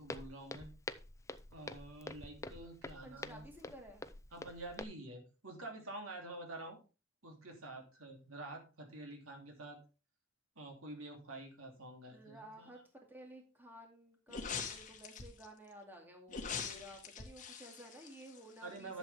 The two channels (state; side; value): normal; both; correlation 0.14